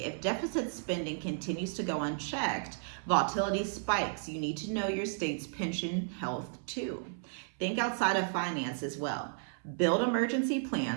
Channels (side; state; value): left; silent; 55 dB below the other